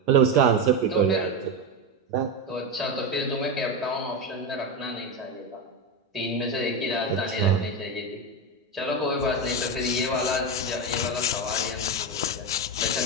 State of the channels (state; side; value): normal; both; correlation 0.14